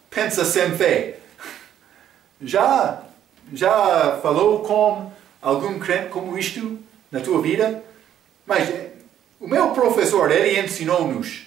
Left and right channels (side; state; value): left; quieter; 10.5 dB